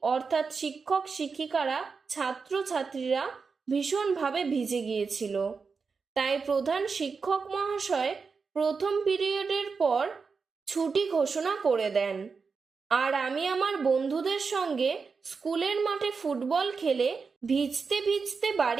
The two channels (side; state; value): left; quieter; 5.0 dB